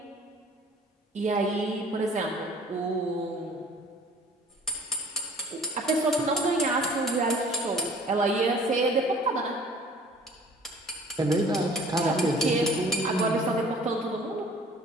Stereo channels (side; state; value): both; normal; correlation 0.51